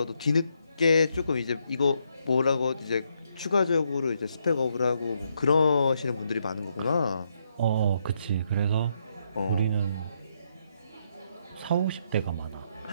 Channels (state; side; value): inverted; both; correlation -0.77